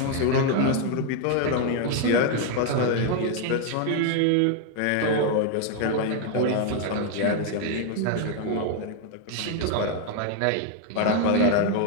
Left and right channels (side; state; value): both; different; correlation 0.01